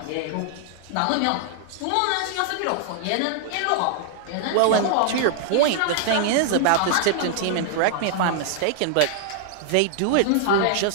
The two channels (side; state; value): both; different; correlation 0.00